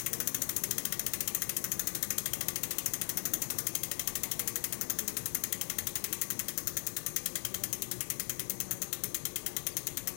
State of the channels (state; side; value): silent; right; 52 dB below the other